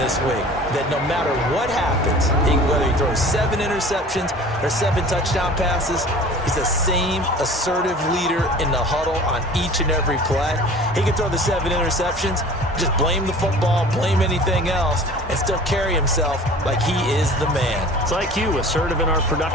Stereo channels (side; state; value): both; normal; correlation 0.44